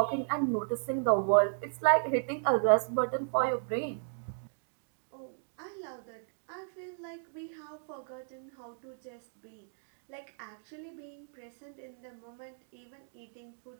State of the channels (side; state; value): left; silent; digital silence